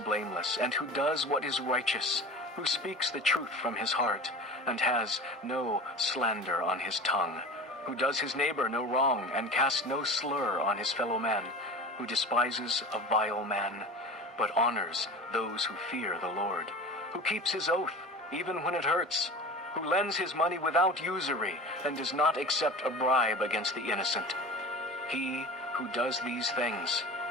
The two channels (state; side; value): normal; both; correlation 0.35